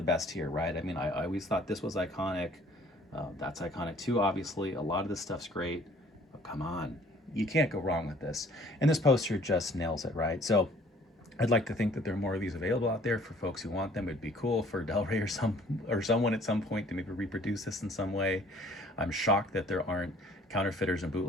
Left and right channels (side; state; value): both; normal; correlation 0.56